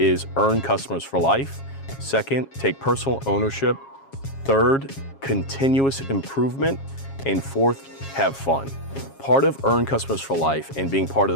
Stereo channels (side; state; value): right; late; 7.3 ms